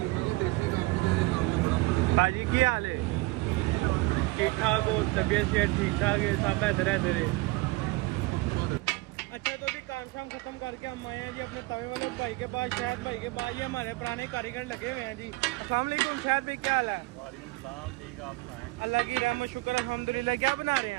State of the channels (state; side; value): quieter; left; 21.8 dB